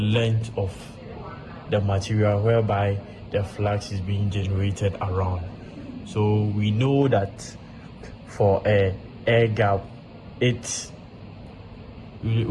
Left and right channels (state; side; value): identical; both; correlation 1.00